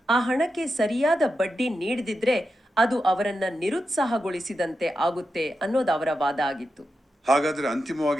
ಆ ಹಣಕ್ಕೆ ಸರಿಯಾದ ಬಡ್ಡಿ ನೀಡದಿದ್ರೆ ಅದು ಅವರನ್ನ ನಿರುತ್ಸಾಹಗೊಳಿಸಿದಂತೆ ಆಗುತ್ತೆ ಅನ್ನೋದು ಅವರ ವಾದ ಆಗಿತ್ತು. ಹಾಗಾದ್ರೆ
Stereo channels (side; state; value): both; normal; correlation 0.88